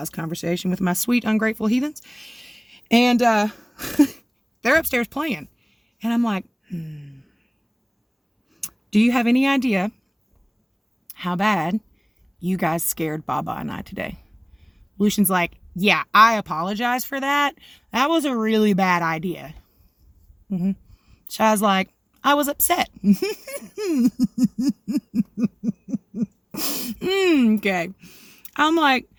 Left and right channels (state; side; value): identical; both; correlation 1.00